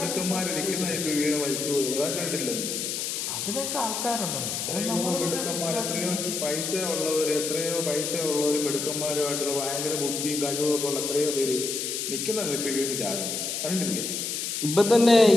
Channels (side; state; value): left; noise; hiss, 3 dB below the sound